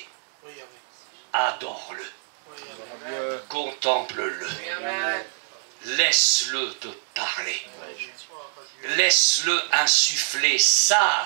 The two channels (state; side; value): silent; left; digital silence